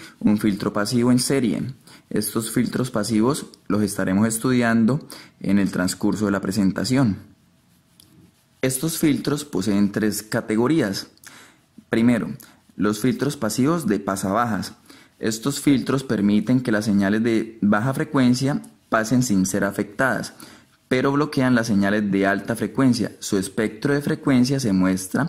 un filtro pasivo en serie. Estos filtros pasivos los estaremos estudiando en el transcurso de la presentación. Estos filtros poseen tres categorías. Primero, los filtros pasivos de pasabajas. Estos filtros permiten que las señales de baja frecuencia pasen sin ser afectadas, pero bloquean las señales de alta frecuencia. Su espectro de frecuencia se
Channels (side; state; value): both; identical; correlation 1.00